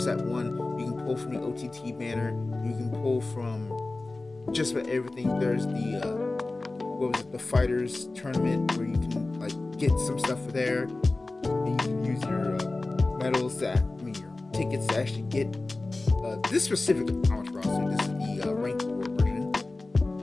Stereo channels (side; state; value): right; quieter; 3.2 dB